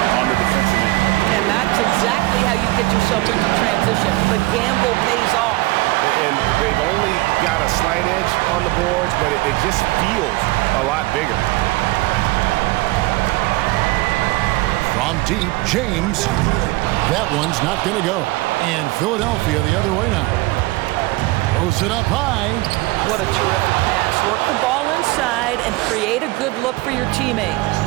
on the defensive end. And that's exactly how you get yourself into transition. The gamble pays off. And they've only got a slight edge on the boards, but it just feels a lot bigger. From deep, James. That one's not going to go. And Philadelphia the other way now. Throws it up high. What a terrific pass. Work the ball inside and create a good look for your teammate.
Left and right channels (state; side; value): quieter; left; 21.3 dB